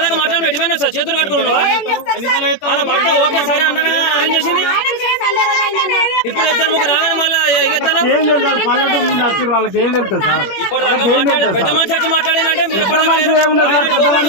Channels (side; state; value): right; late; 21 ms